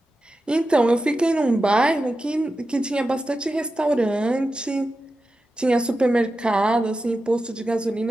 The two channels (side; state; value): both; normal; correlation 0.92